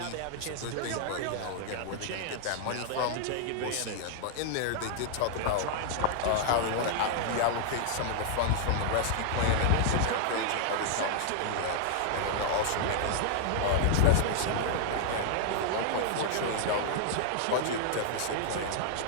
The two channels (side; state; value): both; different; correlation -0.01